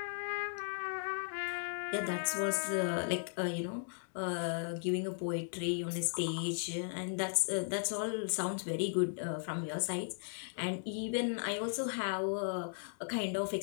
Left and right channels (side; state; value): right; silent; digital silence